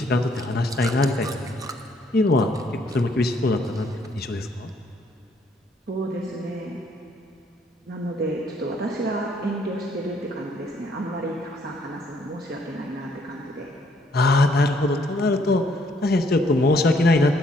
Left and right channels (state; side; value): normal; both; correlation 0.67